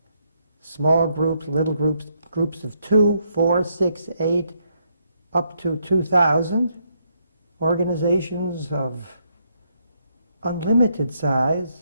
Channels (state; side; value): inverted; both; correlation -0.75